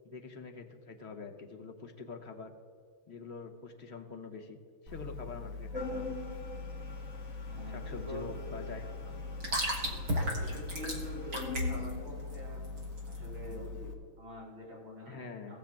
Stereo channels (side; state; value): left; late; 6.3 ms